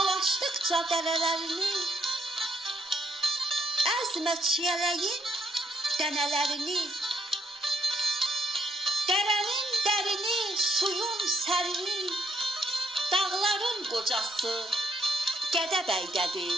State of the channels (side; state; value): both; normal; correlation 0.73